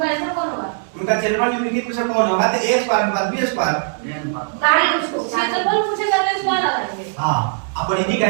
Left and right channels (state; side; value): silent; left; digital silence